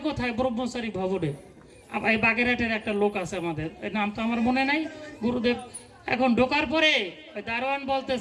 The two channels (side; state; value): both; identical; correlation 1.00